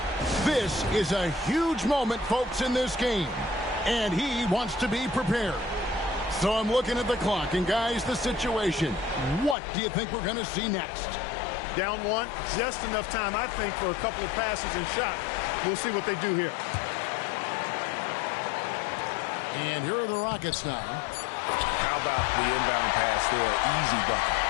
This is a huge moment, folks, in this game. And he wants to be prepared. So I'm looking at the clock, and guys, the situation. What do you think we're going to see next? Down one, just enough time, I think, for a couple of passes and shots. We'll see what they do here. And here are the Rockets now. How about the inbound pass there? Easy bucket.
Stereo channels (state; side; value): drops out; right; at 9.6 s